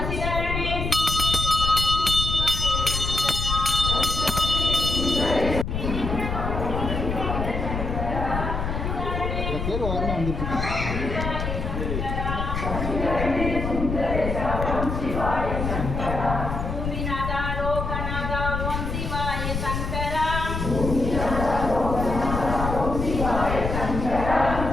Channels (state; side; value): noise; left; rumble, 3 dB below the sound